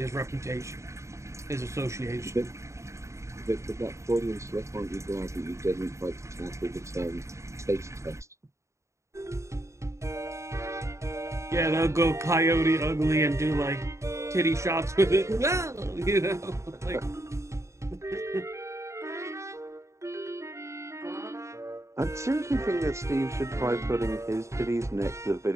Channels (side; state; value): left; late; 0.14 ms